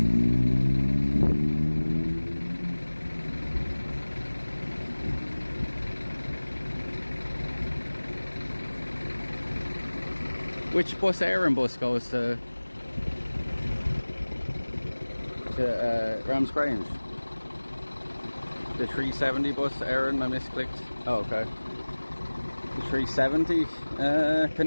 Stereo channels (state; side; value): inverted; both; correlation -1.00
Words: Which bus, Aaron bus, goes to Rams Grange? The 370 bus, Aaron, I misclicked. Oh, okay. The 370.